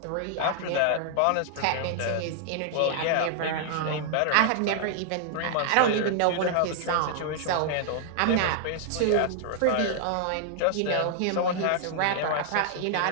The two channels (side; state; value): both; different; correlation -0.01